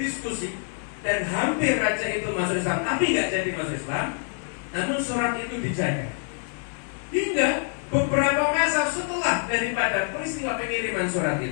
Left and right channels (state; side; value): silent; right; 56 dB below the other